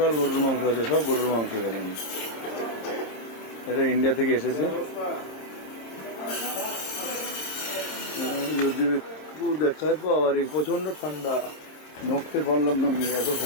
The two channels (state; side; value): late; right; 26 ms